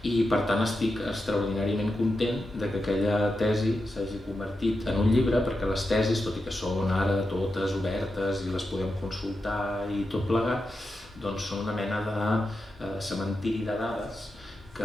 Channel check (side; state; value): both; normal; correlation 0.89